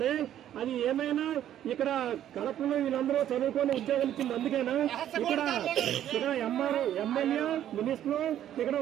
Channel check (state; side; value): quieter; left; 11.3 dB